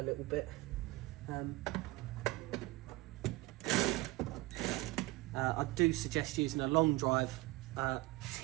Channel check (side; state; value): left; quieter; 20.5 dB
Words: little bit. I do suggest using a long drive